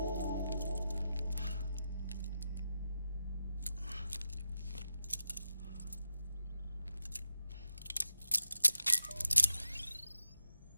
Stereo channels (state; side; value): inverted; both; correlation -0.89